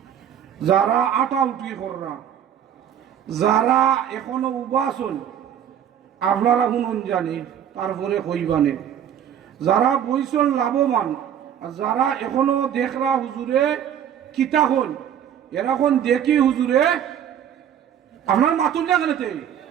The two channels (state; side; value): quieter; left; 9.5 dB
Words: যারা আটা উঠি কররা, যারা এখনো উবাসন আপনারা শুনুন জানি, তারপরে কইবানে যারা বইসন লাভবান, যারা এখনো দেখরা হুজুরে কিতা হন এরকম দেখি হুজুরে আপনার মাতুন না কেনতে